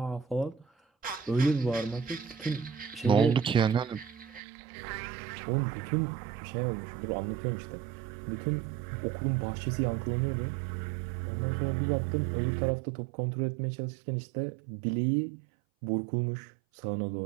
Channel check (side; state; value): left; drops out; at 4.4 s